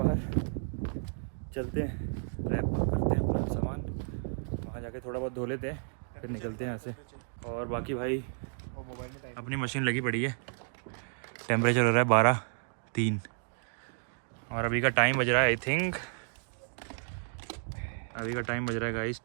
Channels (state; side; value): silent; left; digital silence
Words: चलते हैं, रैप करते हैं अपना सामान, वहाँ जाके थोड़ा बहुत धो लेते हैं, फिर निकलते हैं यहाँ से। और बाकी भाई मोबाइल में टाइम अपनी मशीन लगी पड़ी है, टेम्परेचर हो रहा है 12:03 और अभी का टाइम बज रहा है, आई थिंक अभी का टाइम बज रहा है गाइस